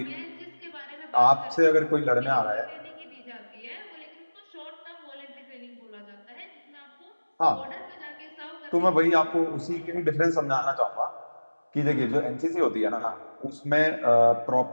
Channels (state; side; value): inverted; both; correlation -1.00